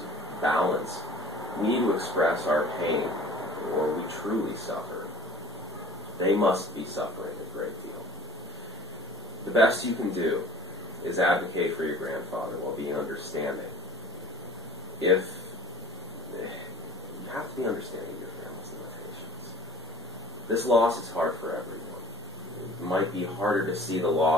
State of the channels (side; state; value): both; normal; correlation 0.49